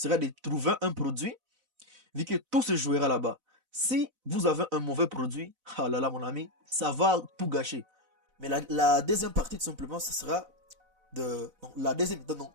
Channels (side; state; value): left; late; 4.0 ms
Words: de trouver un produit, vu que tout se jouera là-bas. Si vous avez un mauvais produit, ah là là, mon ami, ça va tout gâcher. Mais la deuxième partie, tout simplement, ce sera de. Donc, la deuxième étape, donc,